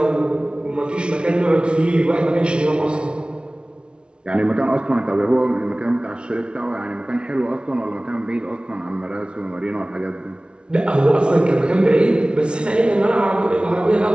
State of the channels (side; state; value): left; late; 0.057 ms